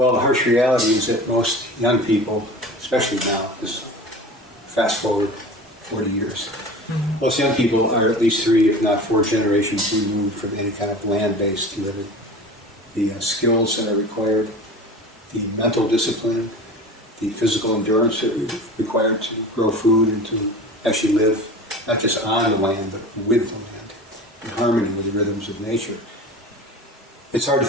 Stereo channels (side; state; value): both; normal; correlation 0.36